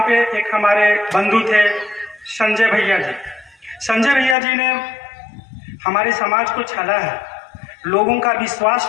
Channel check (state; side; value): drops out; right; at 4.4 s